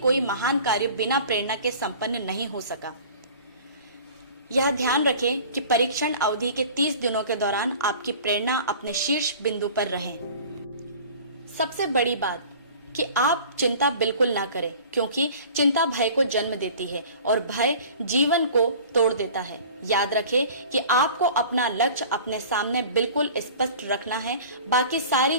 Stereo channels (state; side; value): inverted; both; correlation -0.44